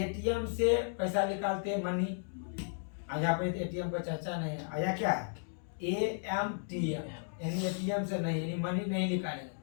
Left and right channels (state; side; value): silent; right; digital silence